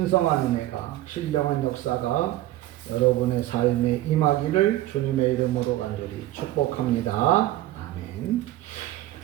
은혜가, 신령한 역사가 여러분의 삶에 임하기를 주님의 이름으로 간절히 축복합니다. 아멘.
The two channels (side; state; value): left; quieter; 15.0 dB